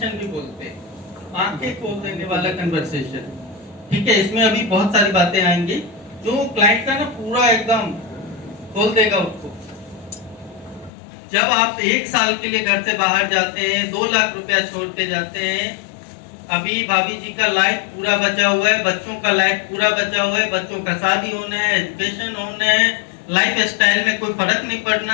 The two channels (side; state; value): right; drops out; at 10.9 s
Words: भी बोलते हैं, आंखें खोल देने वाला कन्वर्सेशन। ठीक है, इसमें अभी बहुत सारी बातें आएंगी जो क्लाइंट का ना पूरा एकदम खोल देगा उसको। जब आप 1 साल के लिए घर से बाहर जाते हैं, 2 लाख रुपया छोड़ के जाते हैं, अभी भाभी जी का लाइफ पूरा बचा हुआ है, बच्चों का लाइफ पूरा बचा हुआ है, बच्चों का शादी होना है, एजुकेशन होना है, लाइफ स्टाइल में कोई फर्क नहीं